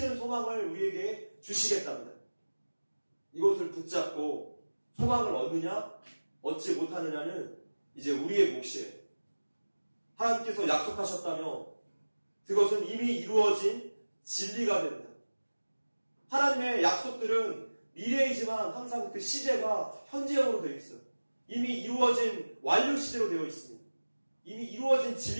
소망을 우리에게 주시겠답니다. 이것을 붙잡고 소망을 얻느냐 얻지 못하느냐는 이제 우리의 몫이에요. 하나님께서 약속하셨다면 그것은 이미 이루어진 진리가 됩니다. 하나님의 약속들은 미래이지만 항상 그 시제가 현재형으로 되어 있어요. 이미 이루어진 완료 시제로 되어 있습니다. 이미 이루어진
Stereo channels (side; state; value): both; inverted; correlation -1.00